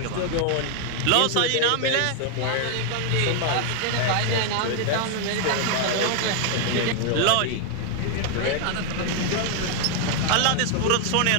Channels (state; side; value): different; both; correlation 0.00